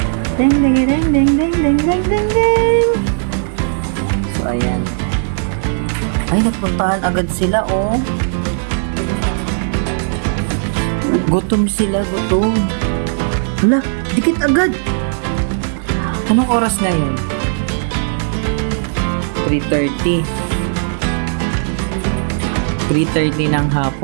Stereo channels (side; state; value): left; silent; digital silence